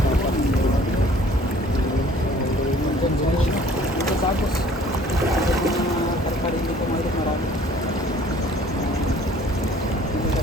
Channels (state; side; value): normal; both; correlation 0.54